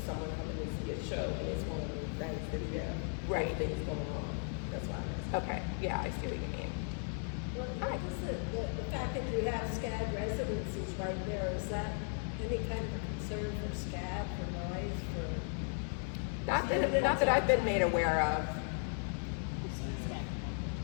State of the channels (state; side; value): silent; right; 53 dB below the other